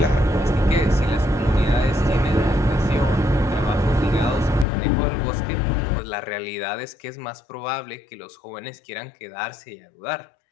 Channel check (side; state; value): right; drops out; at 4.7 s